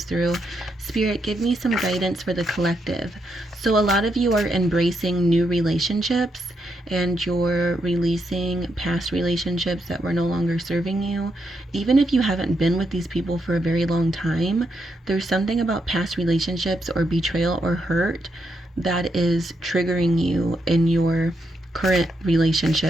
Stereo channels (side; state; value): both; normal; correlation 0.80